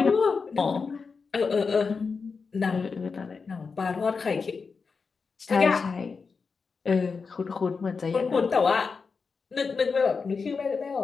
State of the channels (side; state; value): right; quieter; 5.0 dB